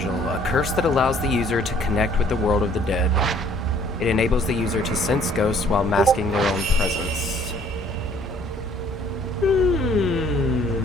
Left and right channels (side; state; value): both; normal; correlation 0.59